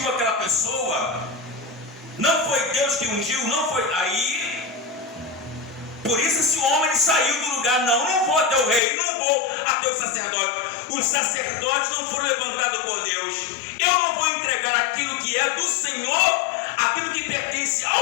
aquela pessoa, não foi Deus que ungiu, não foi aí. Por isso esse homem ele saiu do lugar. Não vou até o rei, não vou até o sacerdote. Os sacerdotes não foram levantados por Deus. Eu não vou entregar aquilo que é do Senhor, aquilo que pertence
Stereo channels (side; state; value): right; drops out; at 8.8 s